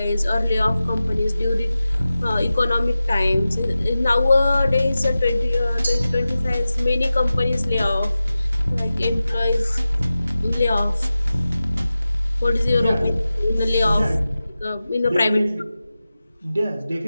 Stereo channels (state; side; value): inverted; both; correlation -0.94